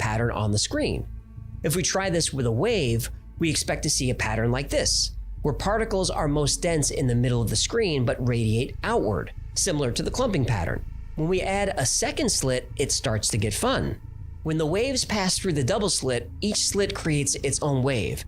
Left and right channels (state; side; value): identical; both; correlation 1.00